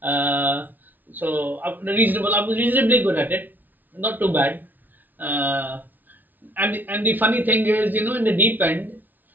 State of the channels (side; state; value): left; late; 0.086 ms